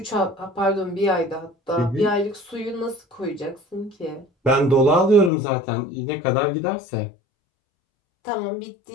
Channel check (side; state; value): right; drops out; at 5.3 s